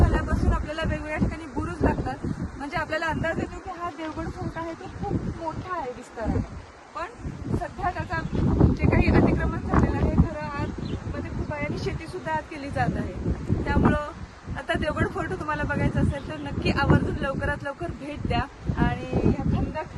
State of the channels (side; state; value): both; identical; correlation 1.00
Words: आपल्याला वेगवेगळ्या ठिकाणी बुरुज लागतात, म्हणजे आपल्याला अंदाज येतो की हा देवगड फोर्ट आहे तो खूप मोठा आहे विस्ताराने. पण सध्या त्याचा जे काही अतिक्रमण झालेलं आहे, खरं आतमध्ये खूप आहे आणि शेती सुद्धा आत केली जात आहे. त्यामुळं आता देवगड फोर्ट तुम्हाला बघायचं असेल तर नक्की आवर्जून लवकरात लवकर भेट द्या आणि ह्या